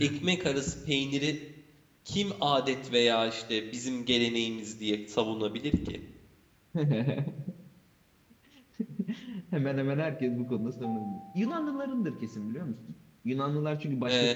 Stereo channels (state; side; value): identical; both; correlation 1.00